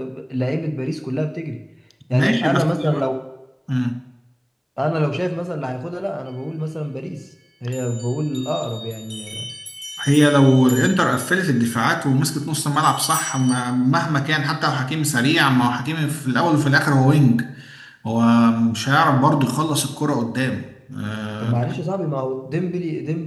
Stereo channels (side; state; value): both; identical; correlation 1.00